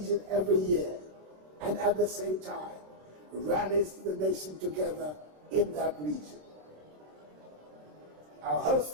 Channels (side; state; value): left; late; 26 ms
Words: every year, and at the same time rallies the nation together in that region. Our host